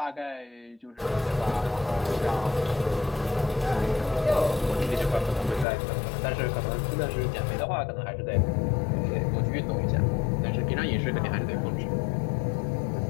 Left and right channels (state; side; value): drops out; right; at 5.7 s